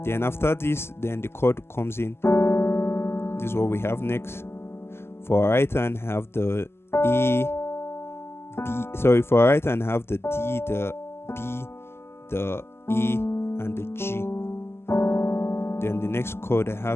Then after this, then the chord comes in. This is what we have next. For our right hand, have the A, B. Sorry, for our right hand, have the D, the B, the A, and the G. Then the next chord I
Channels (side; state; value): right; late; 0.12 ms